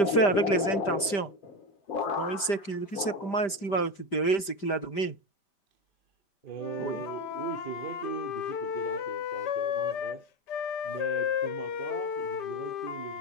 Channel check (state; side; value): late; right; 5.1 ms